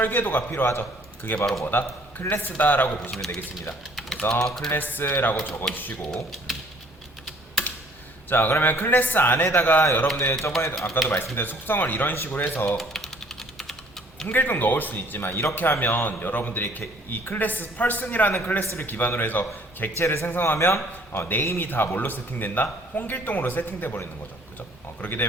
필요하죠. 그게 바로 뭐다? 클래스다 라고 보시면 되겠습니다. 그래서 클래스라고 적어주시고, 자, 그러면 클래스 안에다가 여러분들 저번에 아까도 말씀드린 속성을 이런 식으로 해서 홍길동 넣을 수는 있지만, 이렇게 하면 여러분들이 이 클래스 person이라는 클래스를 기반으로 해서 객체를 생성하면 네임이 다 뭘로 세팅된다? 홍길동으로 세팅돼 버리는 거죠. 그죠? 그렇게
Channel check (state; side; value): normal; both; correlation 0.57